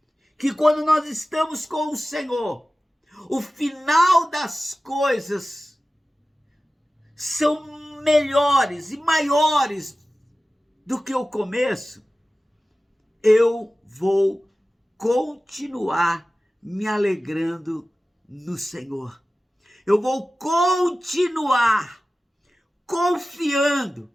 que quando nós estamos com o Senhor, o final das coisas são melhores e maiores do que o começo, eu vou continuar me alegrando no Senhor. Eu vou continuar confiando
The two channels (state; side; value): normal; both; correlation 0.96